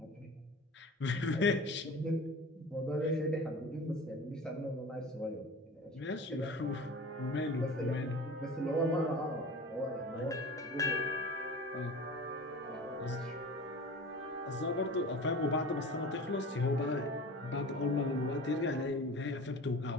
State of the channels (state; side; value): normal; both; correlation 0.37